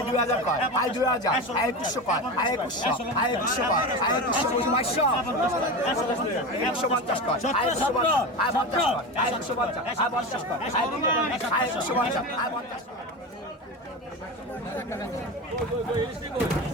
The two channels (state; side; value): normal; both; correlation 0.24